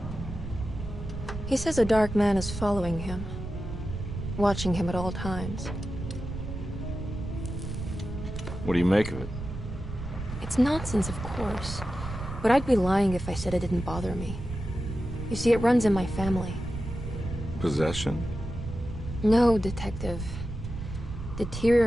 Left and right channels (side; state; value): right; noise; rumble, 8 dB below the sound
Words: He says a dark man is following him, watching him at all times. What do you make of it? It's nonsense, of course, but I'd be lying if I said it didn't bother me. You see, it runs in my family. Possession? No, Detective.